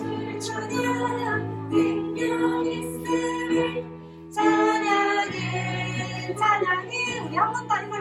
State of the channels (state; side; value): identical; both; correlation 1.00